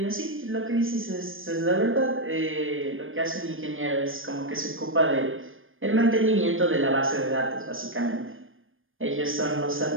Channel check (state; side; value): late; left; 0.59 ms